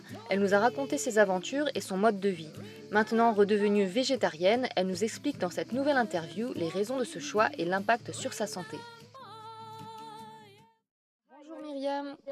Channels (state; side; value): identical; both; correlation 1.00